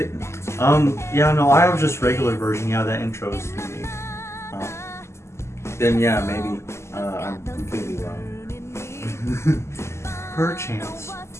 Yeah, no, I have just regular version. Yeah, that intro is unique. Oh. Then yeah, maybe I'm completely wrong. Perchance.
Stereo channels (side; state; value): right; late; 0.13 ms